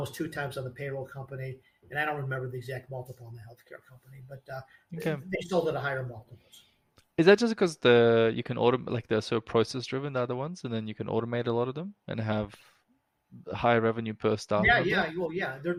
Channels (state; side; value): identical; both; correlation 1.00